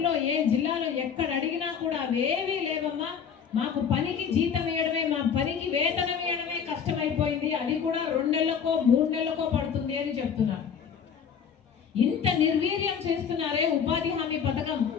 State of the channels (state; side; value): quieter; right; 7.3 dB